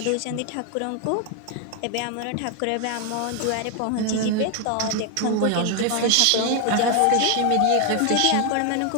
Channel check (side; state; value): both; different; correlation 0.00